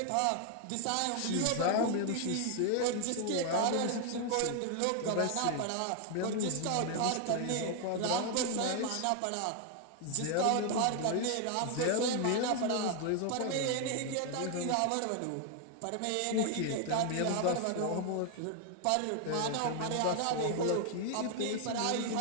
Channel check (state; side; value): different; both; correlation 0.00